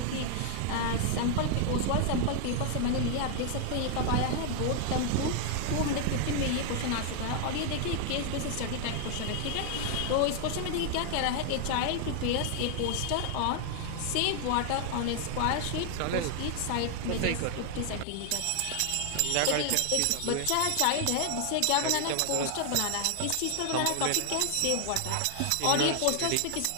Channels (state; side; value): different; both; correlation 0.00